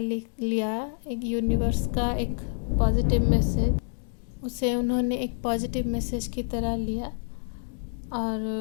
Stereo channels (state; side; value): silent; right; 60 dB below the other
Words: लिया, एक यूनिवर्स का एक पॉजिटिव मैसेज, उसे उन्होंने एक पॉजिटिव मैसेज की तरह लिया और